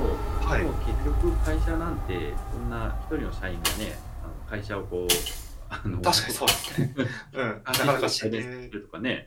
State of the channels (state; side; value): identical; both; correlation 1.00